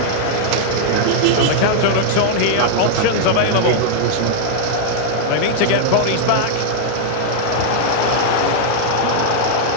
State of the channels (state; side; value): different; both; correlation -0.01